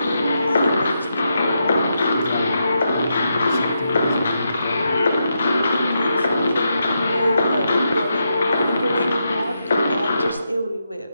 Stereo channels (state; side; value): inverted; both; correlation -0.83